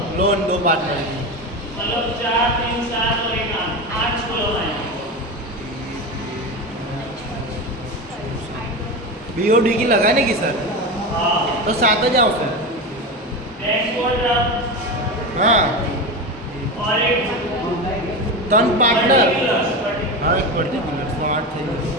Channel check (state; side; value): normal; both; correlation 0.21